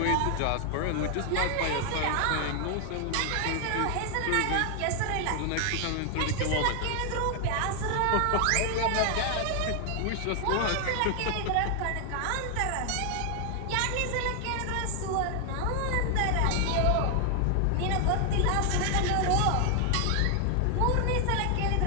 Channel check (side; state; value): both; different; correlation 0.00